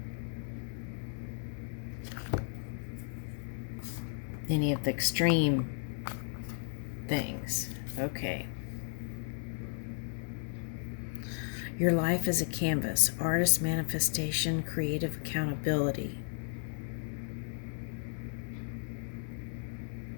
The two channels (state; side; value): silent; right; digital silence